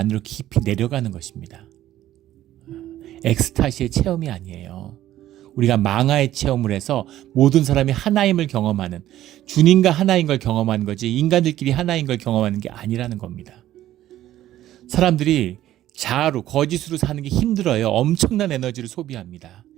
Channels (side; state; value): left; quieter; 13.4 dB